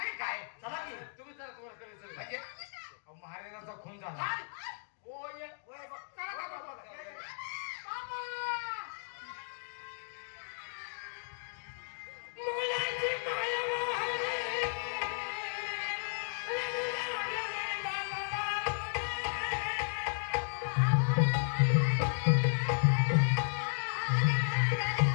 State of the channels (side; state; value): right; silent; digital silence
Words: काय? चला की. तुम्ही चला, तुम्हाला कळेल म्हणजे अहो, महाराजांचा खून झाला. काय? ओ ये ओय बा- काय ओय बाबा? बाबा, या, या.